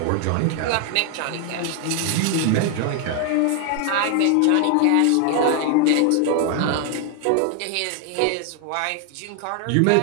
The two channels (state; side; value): different; both; correlation 0.00